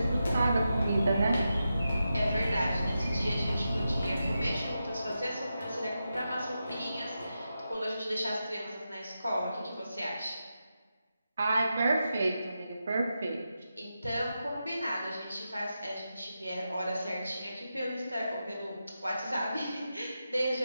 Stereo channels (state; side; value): inverted; both; correlation -0.89